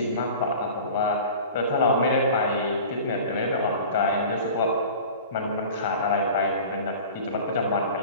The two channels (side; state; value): both; inverted; correlation -0.40